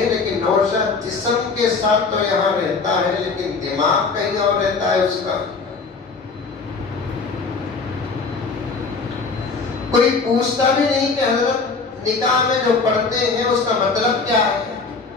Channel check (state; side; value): quieter; right; 4.5 dB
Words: لیکن نوشہ جسم کے ساتھ تو یہاں رہتا ہے لیکن دماغ کہیں اور رہتا ہے اس کا. کوئی پوچھتا بھی نہیں کہ حضرت نکاح میں جو پڑھتے ہیں